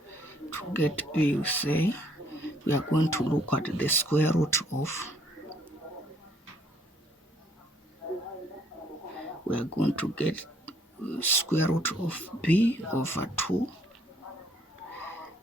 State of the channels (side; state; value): both; normal; correlation 0.64